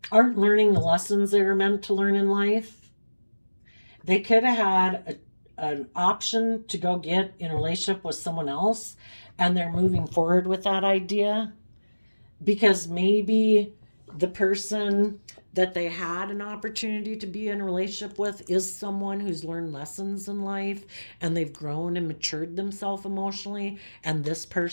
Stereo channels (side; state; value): both; inverted; correlation -1.00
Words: aren't learning the lessons they were meant to learn in life. They could have had an option to go get in a relationship with someone else, and they're moving forward with that idea because maybe the person that they had an opportunity to be in a relationship with is someone who's learned lessons in life and they've grown and matured themselves emotionally, and this